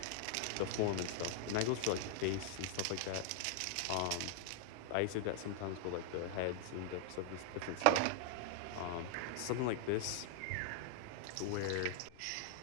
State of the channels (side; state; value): both; different; correlation -0.01